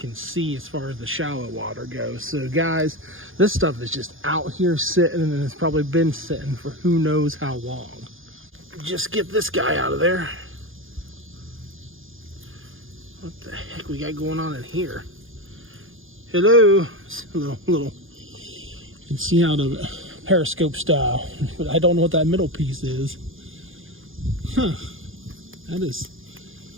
see as far as the shallow water goes. So guys, this stuff is just out here sitting, and it's probably been sitting for who knows how long. Just get this guy out of there. What the heck we got going on in here? Hello. It's a little, you can see out of it, periscope style, but I don't know what that middle piece is. Huh, that is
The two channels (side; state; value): left; late; 0.59 ms